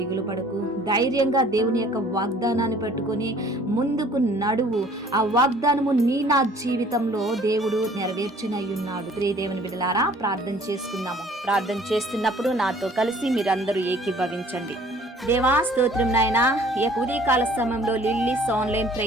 పడకు. ధైర్యంగా దేవుని యొక్క వాగ్దానాన్ని పట్టుకొని ముందుకు నడువు. ఆ వాగ్దానము నా జీవితంలో దేవుడు నెరవేర్చునై ఉన్నాడు. ప్రియ దేవుని బిడ్డలారా, ప్రార్థన చేసుకుందాము. ప్రార్థన చేస్తున్నప్పుడు నాతో కలిసి మీరందరూ ఏకీభవించండి. దేవా స్తోత్రం నాయనా, ఈ యొక్క ఉదయకాల సమయంలో లిల్లీస్ ఆన్లైన్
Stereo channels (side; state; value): both; normal; correlation 0.54